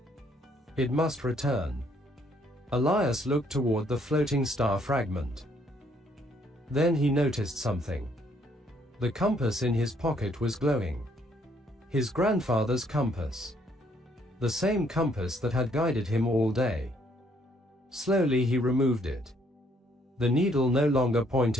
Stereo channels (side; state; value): both; normal; correlation 0.67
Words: It must return. Elias looked toward the floating star fragment. Then he noticed something. The compass in his pocket was glowing. His grandfather's compass. The same compass that had guided him all day. Slowly he removed it. The needle no longer